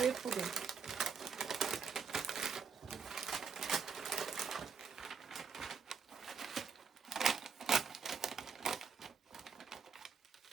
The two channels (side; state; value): left; quieter; 5.9 dB